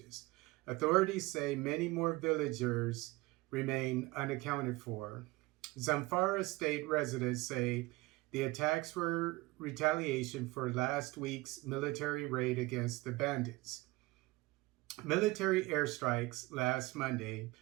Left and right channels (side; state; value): left; quieter; 21.5 dB